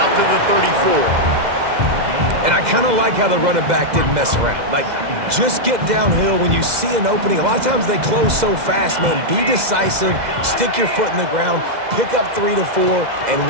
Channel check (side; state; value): left; late; 2.0 ms